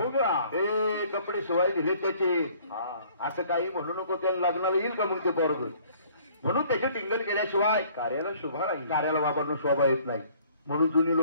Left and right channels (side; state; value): both; inverted; correlation -0.57